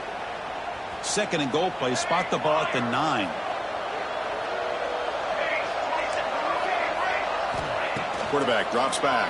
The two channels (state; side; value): identical; both; correlation 1.00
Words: 2nd and goal play, spot the ball at the 9. Quarterback drops